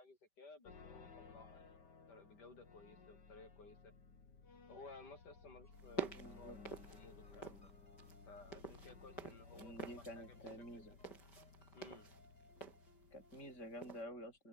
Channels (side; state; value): right; late; 5.1 ms